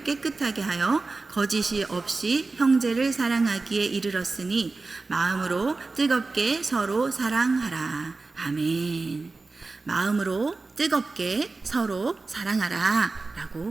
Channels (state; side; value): quieter; left; 3.7 dB